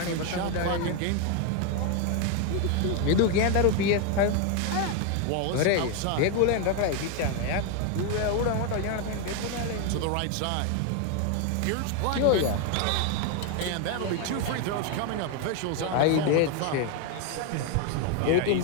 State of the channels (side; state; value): both; different; correlation 0.01